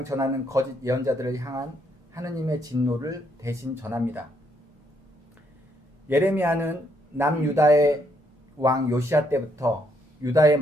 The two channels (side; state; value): both; normal; correlation 0.73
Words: 전하는 거짓 예언자들을 향한 하느님의 진노를 대신 전합니다. 예레미야는 남유다의 왕 요시야 때부터 유다의